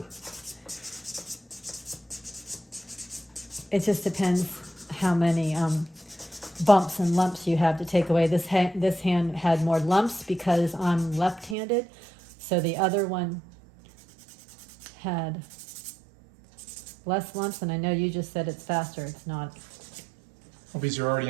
It just depends how many bumps and lumps you have to take away. This hand had more lumps because I'm left-handed, so the other one had less lumps, and I know you just said it's faster. It's not. Well, because you're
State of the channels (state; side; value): drops out; left; at 11.6 s